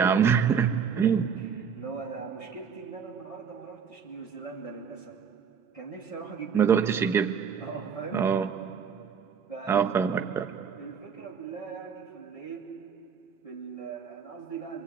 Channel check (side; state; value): left; quieter; 6.8 dB